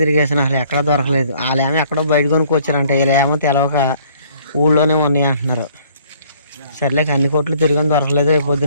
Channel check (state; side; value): inverted; both; correlation -0.59